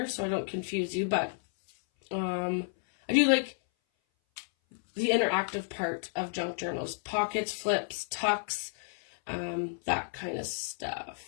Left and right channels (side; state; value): right; silent; 57 dB below the other